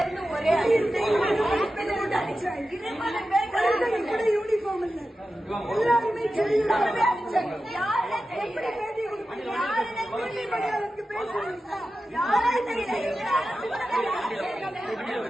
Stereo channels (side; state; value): both; normal; correlation 0.92